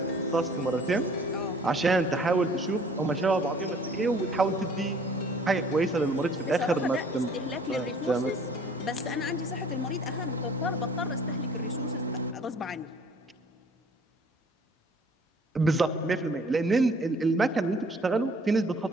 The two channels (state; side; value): normal; both; correlation 0.54